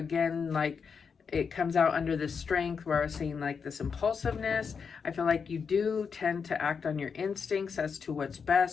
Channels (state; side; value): quieter; right; 6.0 dB